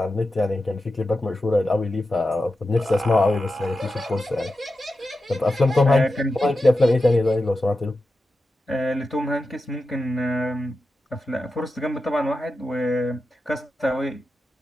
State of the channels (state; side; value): normal; both; correlation 0.91